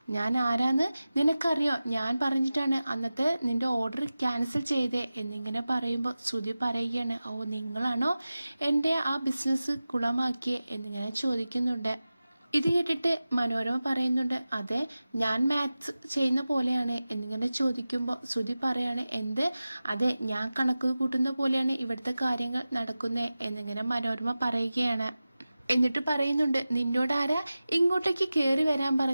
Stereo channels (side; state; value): both; inverted; correlation -0.95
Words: ഞാൻ ആരാന്ന് നിനക്കറിയോ, ഞാൻ പറഞ്ഞിട്ടാണ് അന്നത്തെ നിന്റെ ഓർഡർ ക്യാൻസൽ ചെയ്തേ എന്നിങ്ങനെ പറയുമ്പോൾ ശ്രുതി പറയുകയാണ്, ഓ നിങ്ങളാണോ എൻ്റെ ആ ബിസിനസ് കുളമാക്കിയേ എന്നിങ്ങനെ ചോദിക്കുന്നുണ്ട്. ഇത് കേട്ടിട്ട് മനോരമ പറയുന്നുണ്ട്, അതെ ഞാൻ മാത്സ് ചെയ്യുന്ന പോലെയാണ് എന്നിങ്ങനെ ചോദിക്കുമ്പോൾ ശ്രുതി പറയാണ്, എന്ത്, അതെ ഞാൻ കണക്ക് കൂട്ടുന്ന പോലെയാണ് ഇവിടുത്തെ കാര്യങ്ങൾ നടക്കുന്നത് എന്നിങ്ങനെ മനോരമ പറയുകയാണ്. എന്നിട്ട് പറയുന്നുണ്ട്, നിന്നോട് ആരാ ഇങ്ങോട്ടേക്ക് കയറി വരാൻ